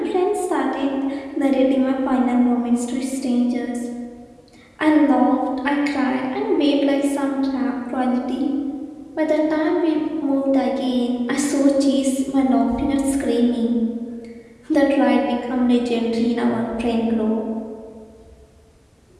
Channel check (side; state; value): both; identical; correlation 1.00